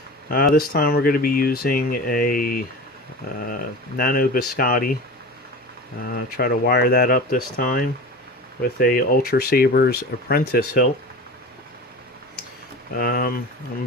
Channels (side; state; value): both; normal; correlation 0.32